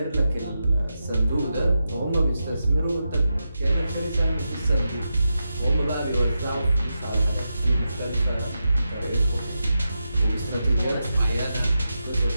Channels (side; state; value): both; inverted; correlation -0.89